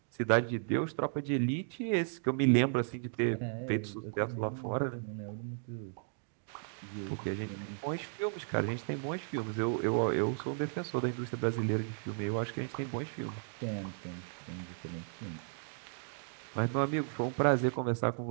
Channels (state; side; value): silent; left; digital silence